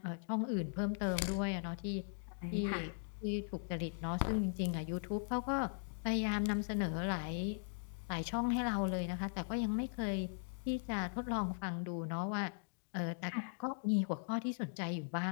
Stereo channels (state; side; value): silent; right; digital silence